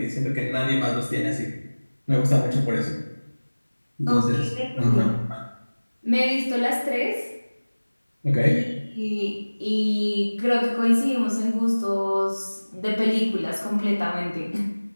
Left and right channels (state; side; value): inverted; both; correlation -1.00